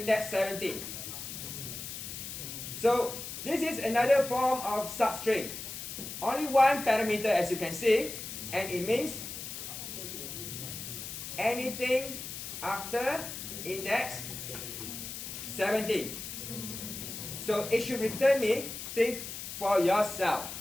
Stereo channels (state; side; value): noise; left; hiss, 8 dB below the sound